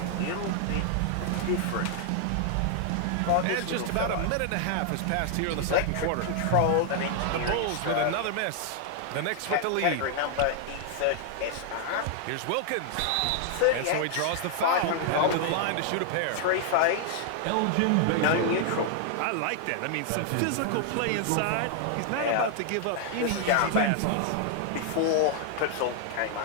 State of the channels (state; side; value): different; both; correlation 0.00